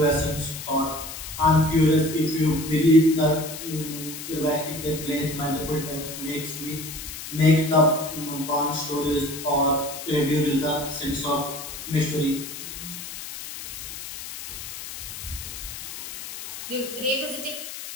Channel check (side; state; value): left; noise; hiss, 10 dB below the sound